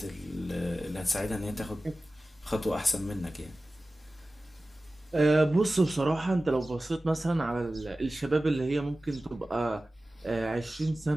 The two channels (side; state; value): both; normal; correlation 0.96